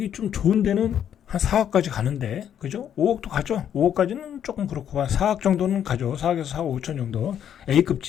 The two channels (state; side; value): quieter; right; 9.4 dB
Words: 좀 좋은 데는 한 4억까지 가는데, 그죠? 5억도 가죠. 5억까지는 조금 그렇고, 한 4억 정도는 가죠. 4억에서 4억 5천 정도.